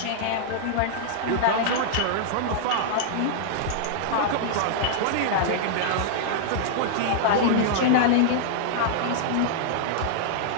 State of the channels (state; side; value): different; both; correlation -0.01